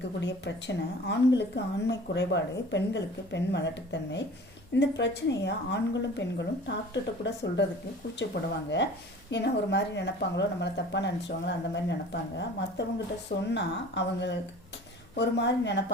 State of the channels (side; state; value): left; noise; hum, 27 dB below the sound